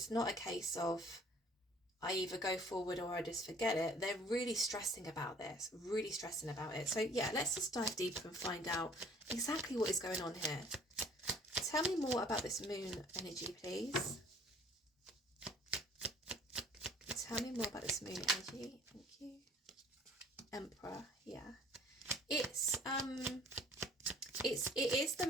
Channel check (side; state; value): both; normal; correlation 0.54